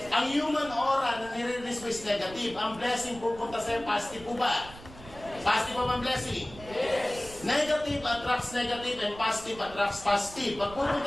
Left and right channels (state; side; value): noise; right; rumble, 17 dB below the sound